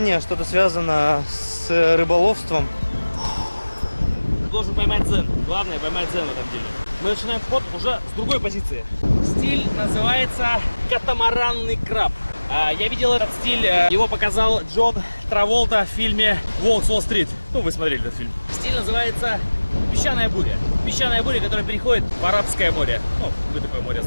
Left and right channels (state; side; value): inverted; both; correlation -1.00